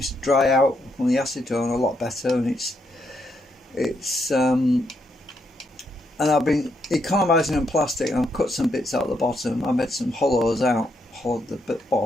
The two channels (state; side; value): normal; both; correlation 0.78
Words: to dry out from the acetone a lot better, and and I've been economising on plastic, and I've cut some bits out of the bottom. I made some hollows out, hollowed the